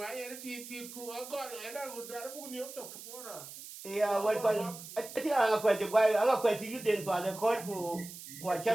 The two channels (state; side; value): noise; right; hiss, 13 dB below the sound